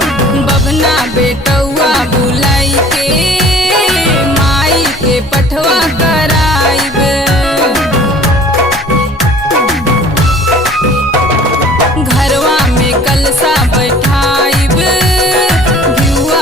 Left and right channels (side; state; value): both; normal; correlation 0.50